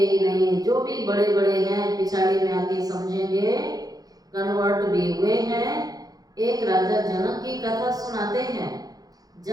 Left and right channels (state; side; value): late; left; 0.18 ms